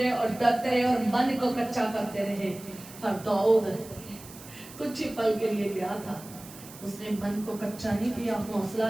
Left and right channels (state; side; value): noise; right; hiss, 17 dB below the sound